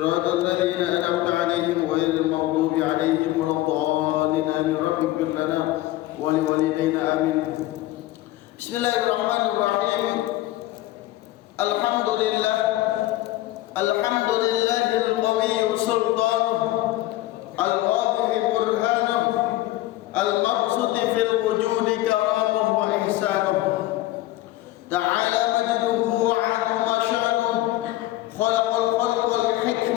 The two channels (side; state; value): right; quieter; 16.2 dB